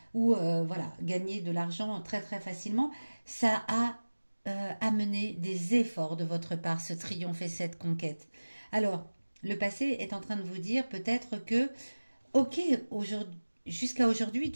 ou voilà, gagner de l'argent très très facilement. Ça a amené des efforts de votre part, ce triomphe et cette conquête. Alors, le passé est en train de vous dire peut-être que, ok, jusqu'à aujourd'hui,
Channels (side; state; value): both; inverted; correlation -1.00